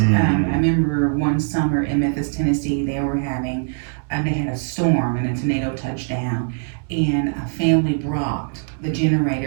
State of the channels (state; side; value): silent; left; 62 dB below the other